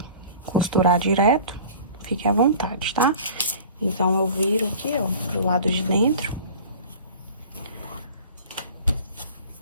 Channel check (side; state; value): both; inverted; correlation -0.42